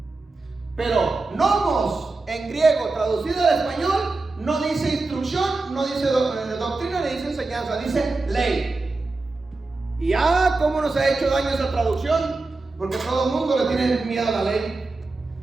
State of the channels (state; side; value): quieter; left; 3.5 dB